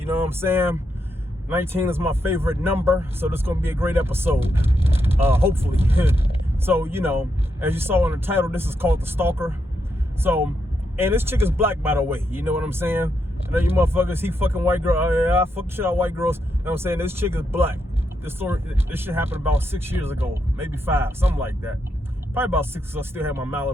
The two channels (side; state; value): both; normal; correlation 0.82